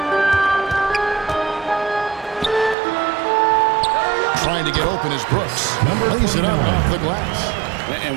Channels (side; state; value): left; drops out; at 2.8 s